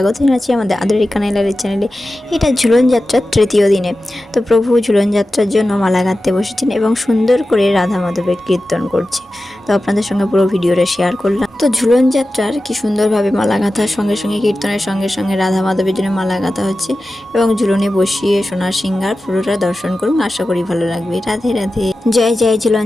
জানাচ্ছি আমাদের আদরের কানাইলালের চ্যানেলে। এটা ঝুলন যাত্রার তৃতীয় দিনে। তো প্রভু ঝুলন যাত্রার জন্য মালা গাঁথতে বসেছেন এবং সুন্দর করে রাধা মাধবের কীর্তন করছে। তো আপনাদের সঙ্গে পুরো ভিডিওটা শেয়ার করলাম। তো ঝুলন যাত্রার কি সুন্দরভাবে মালা গাঁথার সঙ্গে সঙ্গে কীর্তনের সঙ্গে সঙ্গে রাধা মাধবের জন্য মালা গাঁথা হচ্ছে এবং ঝুলনে বসিয়ে সোনার সিংহার পুরোটা দর্শন করুন, আশা করি ভালো লাগবে। রাধে রাধে। জয় জয় ঝুলন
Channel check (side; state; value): both; normal; correlation 0.94